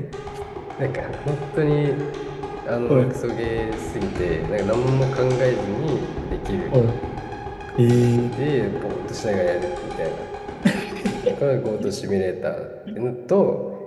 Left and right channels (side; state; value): both; identical; correlation 1.00